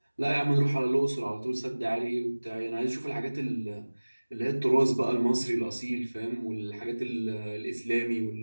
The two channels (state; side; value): inverted; both; correlation -1.00